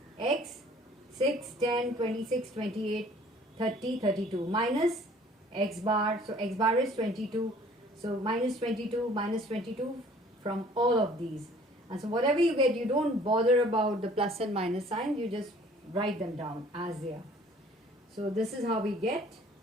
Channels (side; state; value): both; normal; correlation 0.54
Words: x 6, 10, 26, 28, 30, 32 minus x bar. So x bar is 22. So minus 22 from all of these. And so whatever you get, you don't bother about the plus and minus signs. You just write them down as they are. So this is how we get